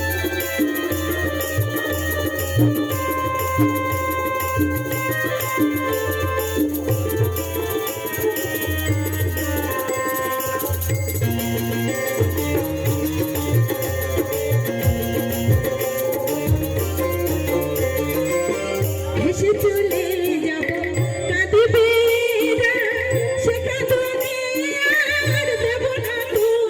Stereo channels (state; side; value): identical; both; correlation 1.00